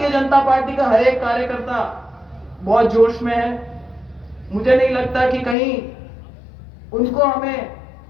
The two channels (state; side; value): drops out; right; at 5.6 s